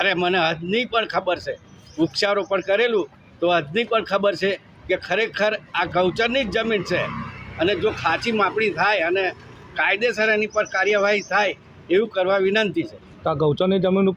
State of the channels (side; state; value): both; identical; correlation 1.00